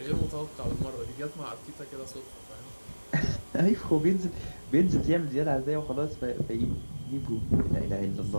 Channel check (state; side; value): inverted; both; correlation -1.00